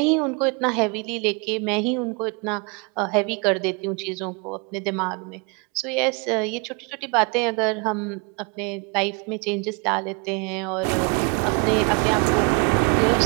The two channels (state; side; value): quieter; left; 32.4 dB